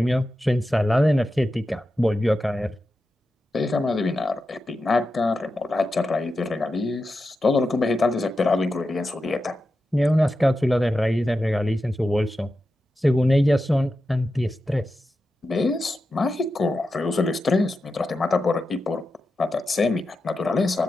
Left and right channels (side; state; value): both; normal; correlation 0.90